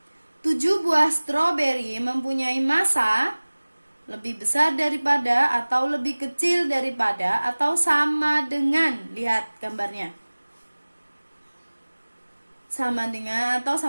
7 buah stroberi mempunyai massa lebih besar daripada atau lebih kecil daripada atau sama dengan, lihat gambarnya. Sama dengan atau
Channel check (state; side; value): inverted; both; correlation -1.00